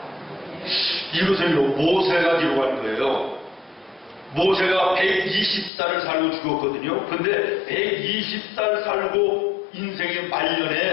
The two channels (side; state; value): right; drops out; at 5.7 s